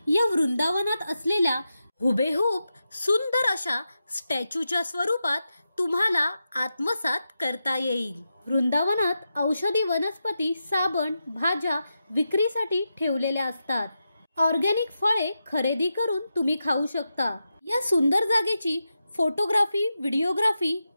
या वृंदावनात असलेल्या हुबेहूब सुंदर अशा स्टॅच्यूच्या स्वरूपात तुम्हाला आत्मसात करता येईल. वृंदावनात औषधी वनस्पती, साबण, भाज्या विक्रीसाठी ठेवलेल्या असतात. ऑर्गॅनिक फळे खरेदी करून तुम्ही खाऊ शकता. या सुंदर जागेची फोटोग्राफी, व्हिडिओग्राफी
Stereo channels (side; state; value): both; inverted; correlation -0.89